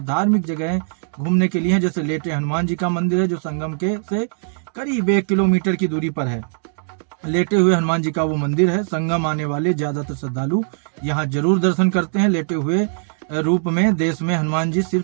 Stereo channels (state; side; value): silent; left; digital silence